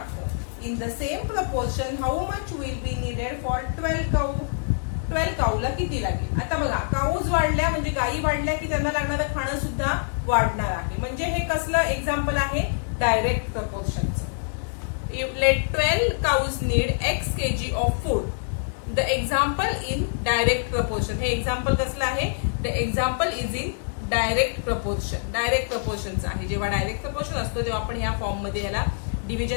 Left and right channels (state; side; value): silent; right; digital silence